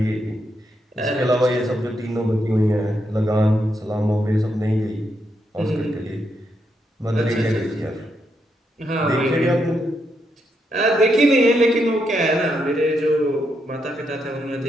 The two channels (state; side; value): normal; both; correlation 0.80